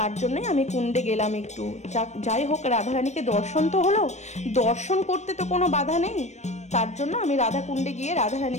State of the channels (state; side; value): late; right; 0.33 ms